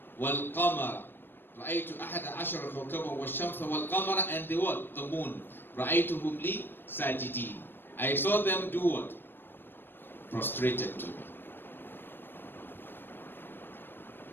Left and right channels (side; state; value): right; late; 0.098 ms